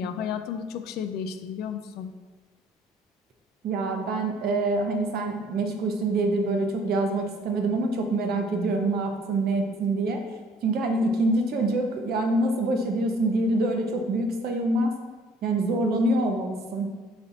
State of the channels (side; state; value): both; normal; correlation 0.57